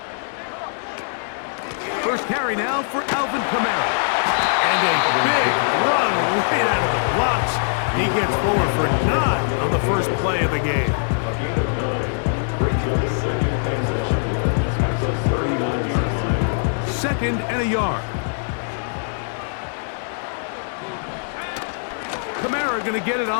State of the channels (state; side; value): silent; right; digital silence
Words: First carry now for Alvin Kamara. And a big run right out of the blocks. He gets forward for 9 on the first play of the game. Second and a yard. Kamara going to get it